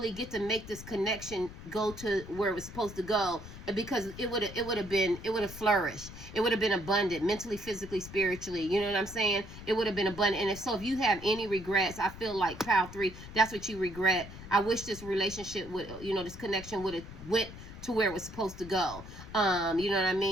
get to make this connection go to where it was supposed to go, because it would have flourished. It would have been abundant, mentally, physically, spiritually. You know what I'm saying? It would have been abundant. And if you have any regrets, I feel like Pile 3, that's what you regret. I wish this relationship this connection would have went to where it was supposed to go. You know what I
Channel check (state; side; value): noise; left; rumble, 14 dB below the sound